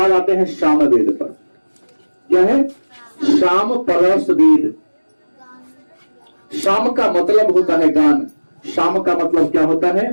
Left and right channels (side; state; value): both; inverted; correlation -1.00